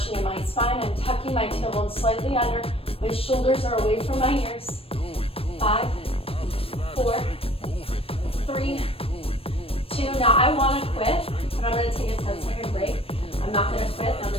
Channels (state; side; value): late; right; 0.28 ms